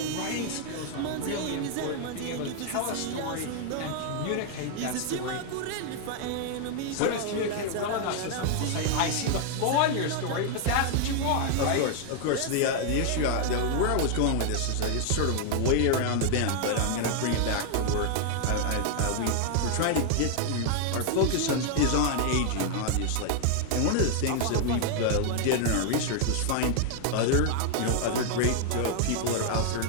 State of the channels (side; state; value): both; different; correlation 0.00